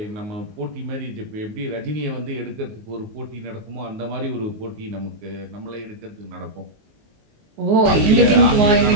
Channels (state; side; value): late; left; 19 ms